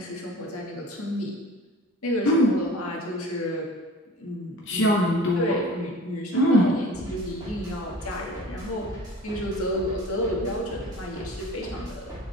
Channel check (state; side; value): normal; both; correlation 0.42